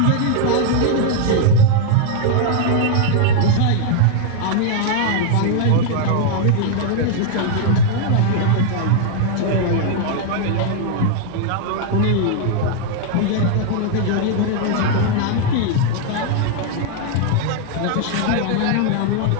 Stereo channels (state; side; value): different; both; correlation 0.00